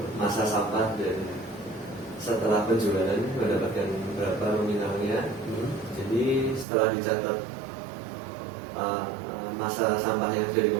masa sampah dan setelah penjualan mendapatkan berapa nominalnya. Jadi setelah dicatat masa sampah yang sudah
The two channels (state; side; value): drops out; left; at 6.7 s